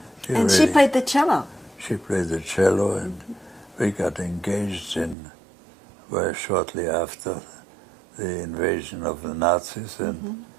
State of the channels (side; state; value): left; drops out; at 5.2 s